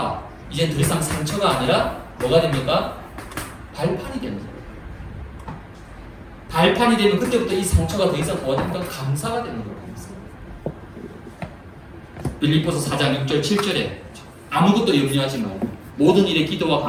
이제 더 이상 상처가 아니라 뭐가 됩니까? 발판이 되는 거예요. 발판이 되면 그때부터 이 상처가 더 이상 뭐가 됩니까? 감사가 되는 거예요. 빌립보서 4장 6절 7절에 아무것도 염려하지 말고 모든 일에 기도와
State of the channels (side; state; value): both; identical; correlation 1.00